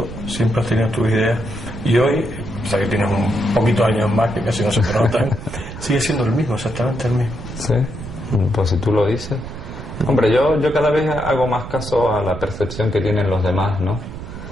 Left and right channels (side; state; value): right; noise; rumble, 11 dB below the sound